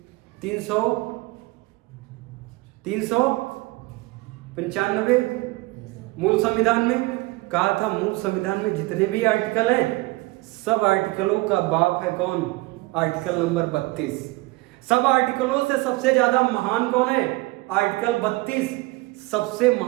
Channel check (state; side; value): quieter; left; 22.0 dB